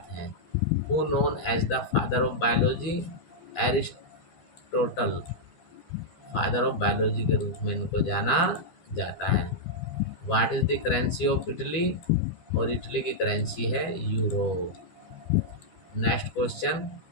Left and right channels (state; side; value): late; right; 12 ms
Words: है। Who known as the father of biology? Aristotle father of biology के रूप में इनको जाना जाता है। What is the currency of Italy? और इटली की करेंसी है euro. Next question